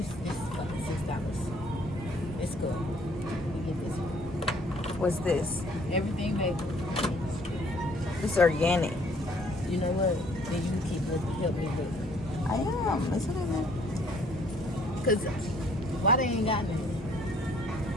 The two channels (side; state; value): both; normal; correlation 0.61